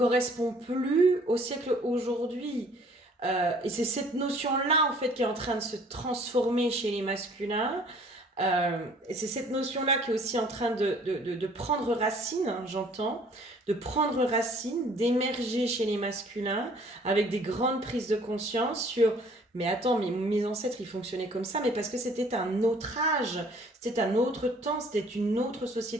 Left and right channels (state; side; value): normal; both; correlation 0.56